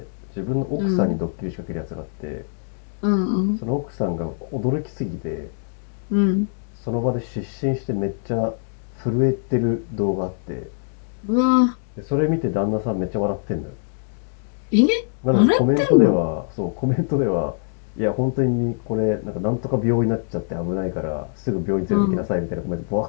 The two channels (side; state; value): right; silent; digital silence